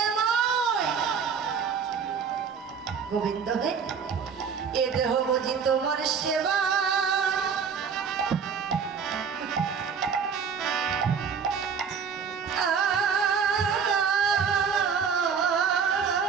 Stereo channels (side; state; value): left; quieter; 6.4 dB